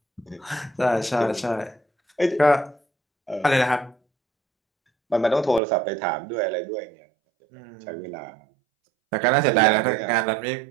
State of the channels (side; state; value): left; drops out; at 5.6 s